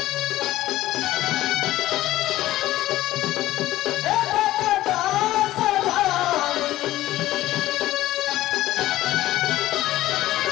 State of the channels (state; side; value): quieter; right; 15.3 dB